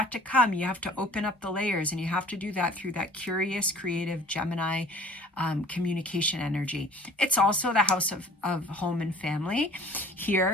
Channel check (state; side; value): normal; both; correlation 0.48